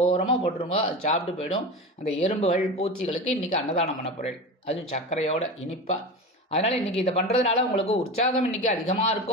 போட்டுருங்க. அது சாப்பிட்டு போயிடும். அந்த எறும்புகள் பூச்சிகளுக்கு இன்னைக்கு அன்னதானம் பண்ண போகிறேன், அதுவும் சர்க்கரையோட இனிப்பாக. அதனால இன்னைக்கு இதை பண்றதுனால உங்களுக்கு உற்சாகம் இன்னைக்கு அதிகமா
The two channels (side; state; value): both; normal; correlation 0.27